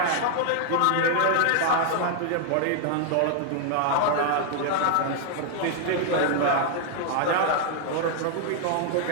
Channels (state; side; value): different; both; correlation 0.00